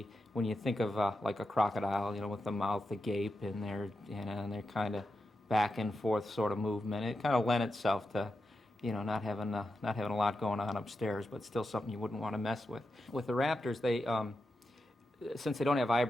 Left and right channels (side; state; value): both; normal; correlation 0.88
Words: when you think of like a crocodile, with the mouth agape and their kind of back and forth sort of movement, it kind of lent itself to not having a lot going on upstairs, but still something you wouldn't want to mess with. With the raptors, they since they don't have